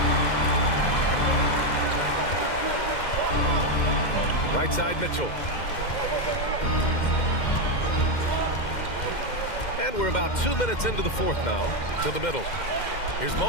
Right side, Mitchell. And we're about 2 minutes into the fourth now. To the middle. Here's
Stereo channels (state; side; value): late; right; 2.1 ms